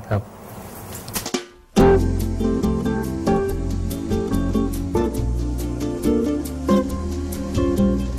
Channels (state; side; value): identical; both; correlation 1.00